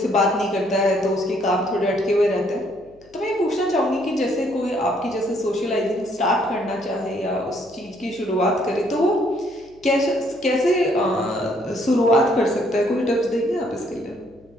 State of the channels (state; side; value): noise; left; hum, 30 dB below the sound